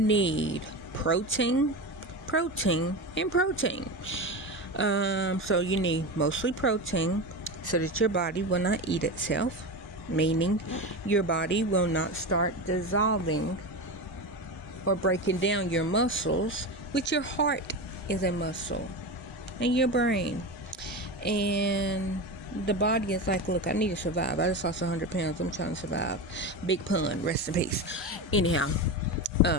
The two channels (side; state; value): both; normal; correlation 0.22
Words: protein, and protein. So you need mostly protein so that your body will not eat itself, meaning your body will not start dissolving or breaking down your muscles, which your heart is a muscle, and your brain. And the body is like, look, I need to survive. I just lost 100 pounds. I'm trying to survive. Big pun. Rest in peace. Anyhow,